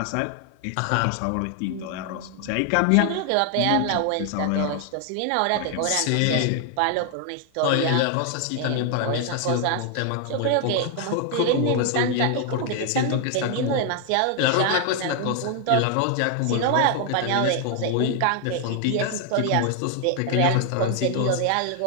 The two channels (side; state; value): both; different; correlation 0.00